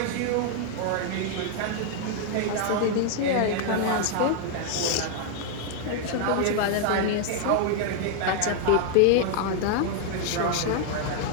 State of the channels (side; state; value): both; different; correlation 0.00